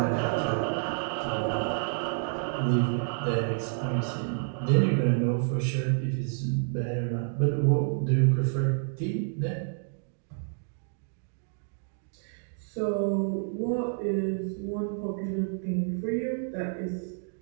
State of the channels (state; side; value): silent; left; digital silence